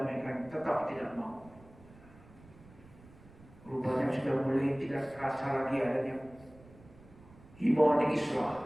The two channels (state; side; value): noise; right; rumble, 23 dB below the sound